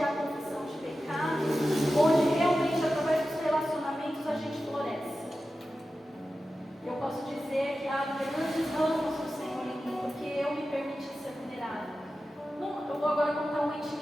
há confissão de pecados, onde realmente através dos relacionamentos a gente floresce. Eu posso dizer que há grandes ramos do Senhor em mim, porque eu me permiti ser vulnerável. Eu vou agora contar uma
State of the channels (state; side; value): normal; both; correlation 0.93